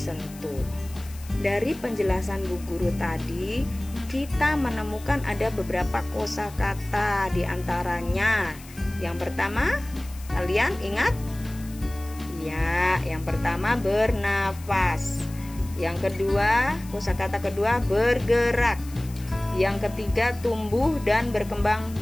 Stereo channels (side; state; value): left; noise; hiss, 20 dB below the sound